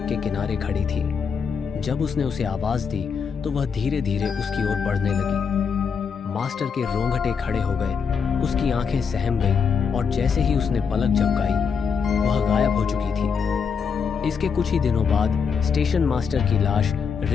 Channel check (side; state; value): right; quieter; 6.1 dB